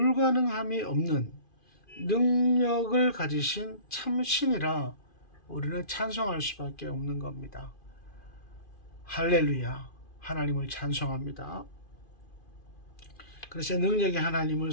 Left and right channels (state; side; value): late; right; 2.5 ms